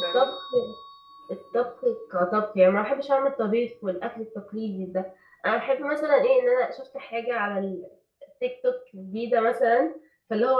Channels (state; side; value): identical; both; correlation 1.00